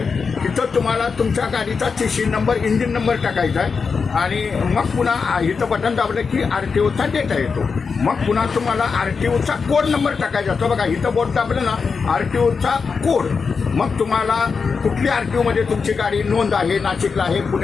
तिथं तुम्हाला तुमच्या गाडीचा TC नंबर, इंजिन नंबर टाकायचा आहे आणि मग पुन्हा इथं बटन दाबलं की RTOचा डेटा येतो. मग पुन्हा तुम्हाला RTOचा कोड नंबर टाकायचा असतो. बघा इथं बोट दाबलं ना RTOचा कोड, मग तुम्हाला कुठली RTOमध्ये तुमची गाडी नोंद आहे, नाशिकला आहे,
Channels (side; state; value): right; quieter; 5.3 dB